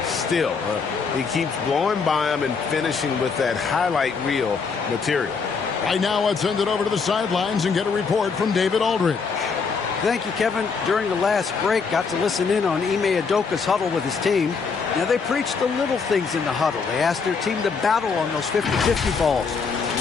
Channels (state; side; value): quieter; right; 5.3 dB